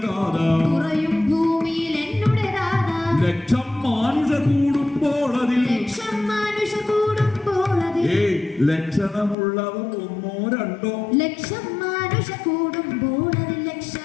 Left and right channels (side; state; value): right; drops out; at 9.3 s